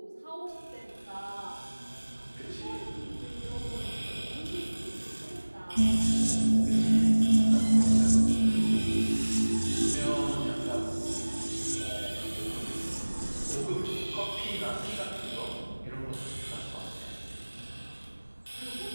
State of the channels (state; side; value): inverted; both; correlation -1.00